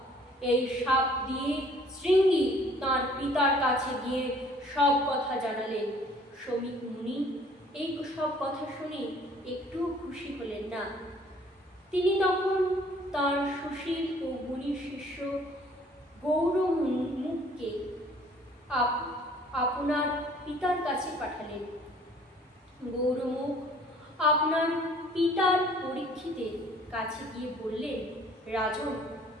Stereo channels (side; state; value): both; normal; correlation 0.56